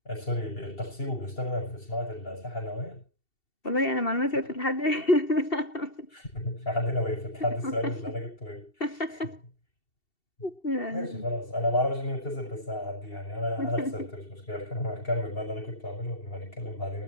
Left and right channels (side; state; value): right; late; 2.7 ms